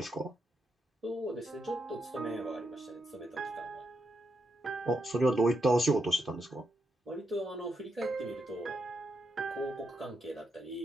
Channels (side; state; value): both; normal; correlation 0.82